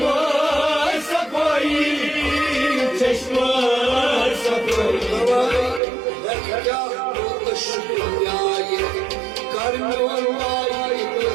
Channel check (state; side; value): drops out; left; at 5.8 s